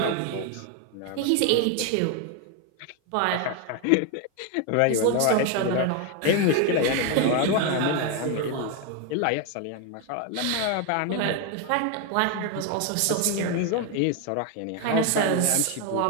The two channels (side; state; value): both; different; correlation 0.01